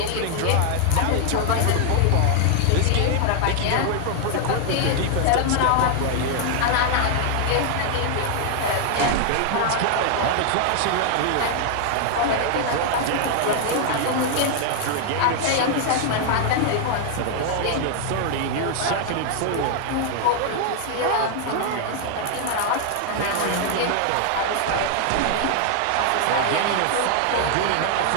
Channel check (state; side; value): different; both; correlation 0.00